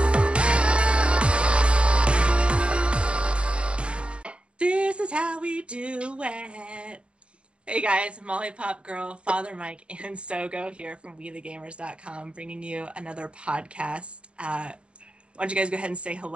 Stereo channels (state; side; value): late; left; 0.057 ms